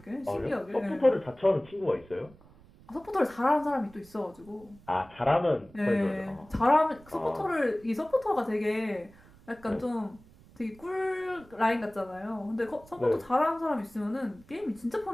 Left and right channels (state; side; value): noise; right; rumble, 24 dB below the sound